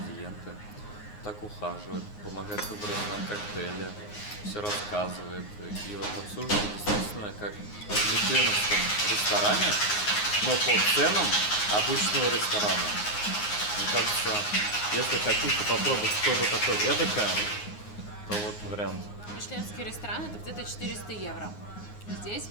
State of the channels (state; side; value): late; right; 9.6 ms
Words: так ухаживает, помогает выбрать нам коктейли, все рассказывает. И вот обслуживает действительно как в мишленовском ресторане, но по ценам обычного ресторана. Мне кажется, если хотите попробовать что-то такое эдакое, то вот вариант. Мишленский ресторан это где-то 400 евро. Здесь